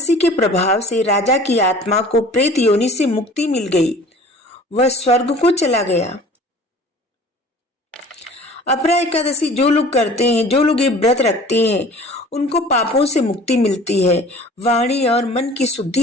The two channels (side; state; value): both; normal; correlation 0.46